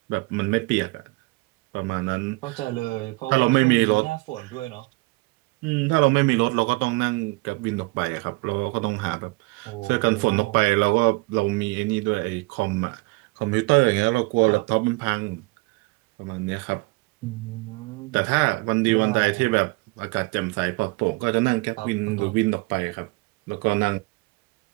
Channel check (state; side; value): quieter; left; 25.5 dB